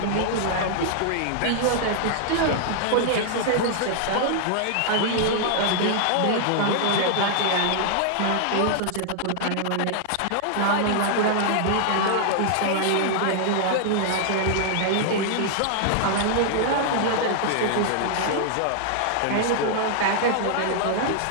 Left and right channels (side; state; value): both; different; correlation -0.01